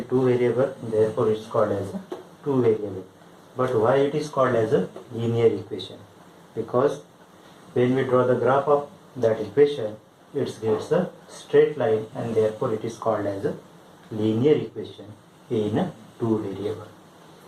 two variable, therefore it's called as a two variable. But why it is called as a linear equation? Because when we draw the graph of that equation, it gets a straight line and therefore it is called as a linear equation in a two variable.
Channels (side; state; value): both; identical; correlation 1.00